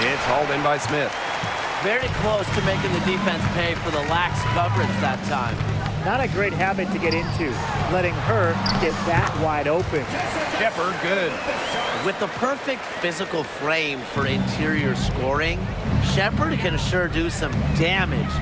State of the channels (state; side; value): identical; both; correlation 1.00